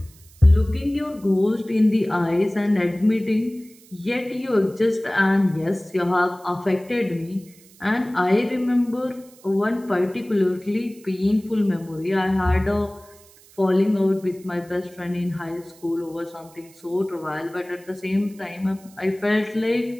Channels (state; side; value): noise; right; hiss, 25 dB below the sound